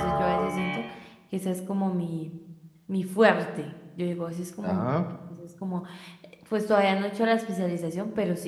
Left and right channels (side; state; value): both; identical; correlation 1.00